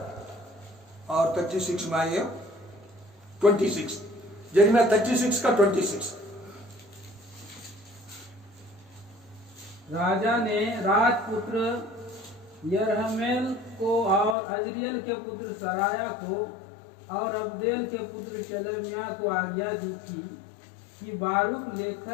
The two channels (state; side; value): drops out; right; at 14.4 s